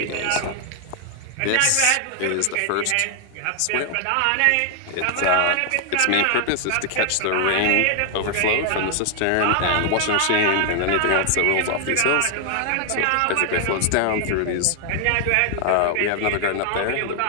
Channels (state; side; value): different; both; correlation 0.00